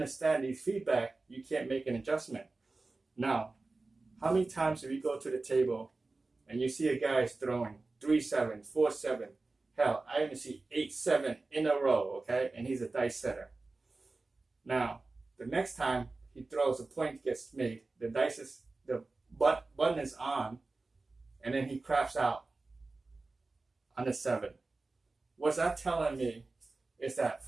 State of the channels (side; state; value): left; quieter; 3.5 dB